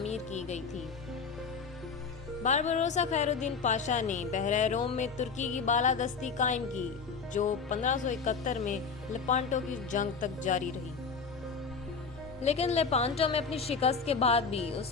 کی گئی تھی۔ باربروسا خیر الدین پاشا نے بحر روم میں ترکی کی بالادستی قائم کی، جو 1571 میں لیپانٹو کی جنگ تک جاری رہی۔ لیکن لیپانٹو میں اپنی شکست کے بعد بھی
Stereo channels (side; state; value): right; quieter; 5.3 dB